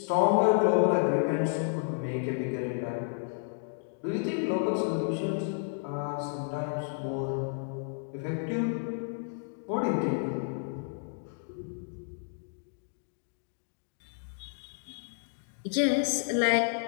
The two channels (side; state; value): right; silent; digital silence